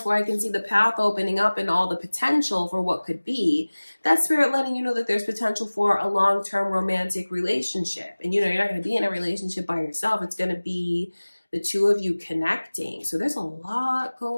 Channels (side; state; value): both; inverted; correlation -1.00